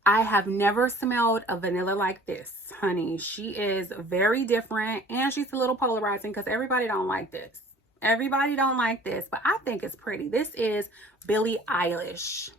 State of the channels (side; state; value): both; normal; correlation 0.50